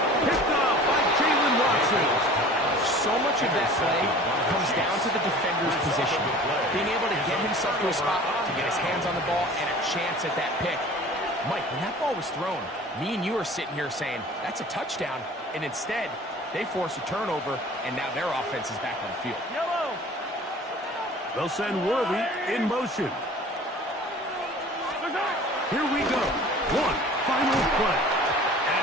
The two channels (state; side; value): normal; both; correlation 0.44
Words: Picked off by Jalen Watson. So much of that play comes down to the defender's position. Being able to get himself to a spot, to get his hands on the ball, and a chance at that pick. Mike, when that ball was thrown, me and you are sitting here saying, that's a touchdown. And instead, they force a turnover, and now their offense is back on the field. Yellow. They'll send Worthy in motion. Here we go. One final play.